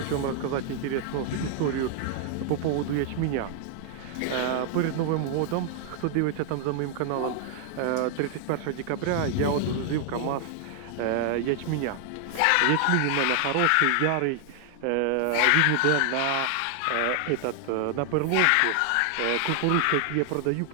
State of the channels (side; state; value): both; different; correlation 0.00